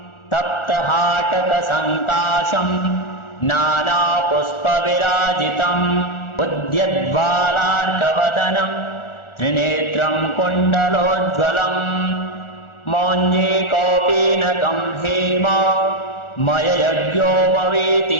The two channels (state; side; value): late; right; 1.4 ms